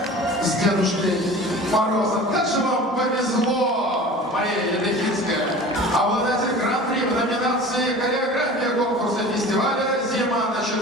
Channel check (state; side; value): normal; both; correlation 0.40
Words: с Дедушкой Морозом. Как же вам повезло, Мария Ядрехинская, обладатель гран-при в номинации «Хореография» конкурса фестиваля «Зима